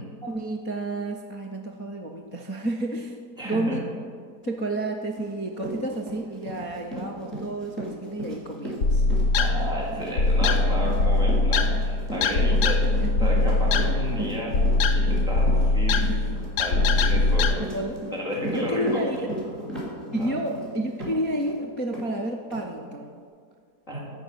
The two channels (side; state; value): right; late; 4.9 ms